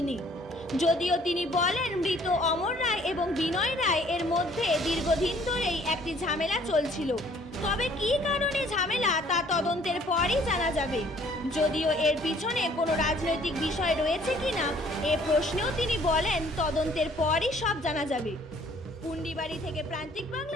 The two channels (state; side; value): normal; both; correlation 0.59